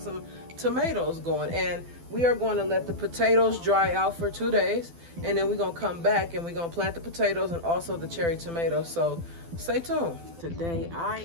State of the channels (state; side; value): late; left; 12 ms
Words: some tomatoes going. And we are going to let the potatoes dry out for 2 days, and then we're going to come back and we're going to plant the potatoes and also the cherry tomatoes. So stay tuned. Today